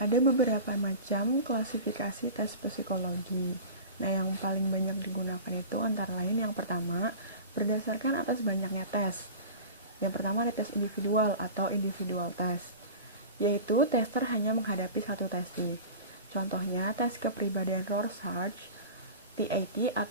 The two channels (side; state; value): both; inverted; correlation -0.34